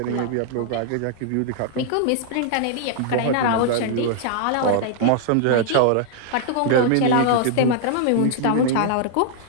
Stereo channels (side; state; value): both; different; correlation -0.01